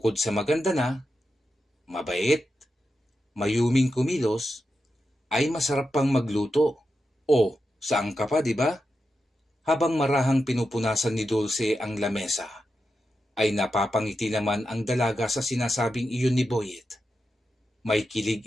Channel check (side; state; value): both; normal; correlation 0.89